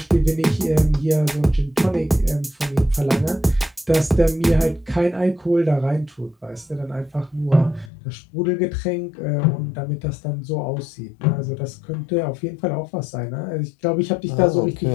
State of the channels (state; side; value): drops out; right; at 7.9 s